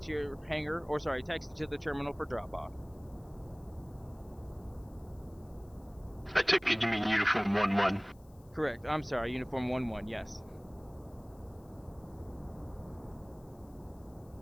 to your hangar, or sorry, taxi to the terminal for drop-off. I took it you mean Uniform 1-1. Correct, I'm sorry, Uniform 1-1, yes.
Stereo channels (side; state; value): left; noise; hiss, 30 dB below the sound